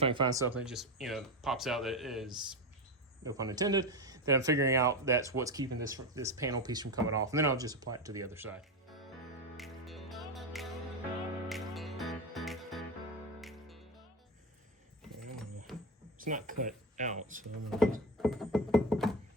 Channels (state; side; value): normal; both; correlation 0.17